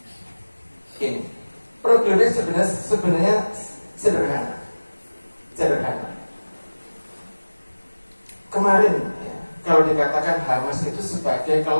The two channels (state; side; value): inverted; both; correlation -1.00